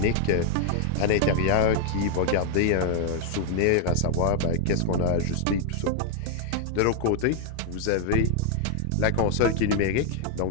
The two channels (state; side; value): different; both; correlation 0.00